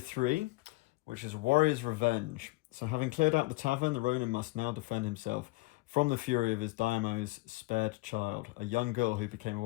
which is Warrior's Revenge. So having cleared out the tavern, the Ronin must now defend himself from the fury of his Daimo's spared child, a young girl who became a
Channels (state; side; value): quieter; right; 22.2 dB